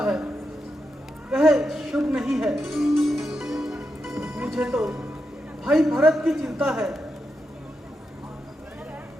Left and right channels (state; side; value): normal; both; correlation 0.86